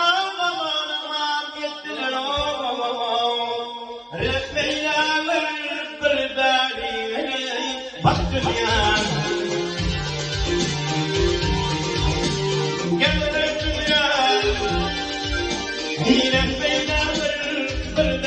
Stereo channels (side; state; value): both; identical; correlation 1.00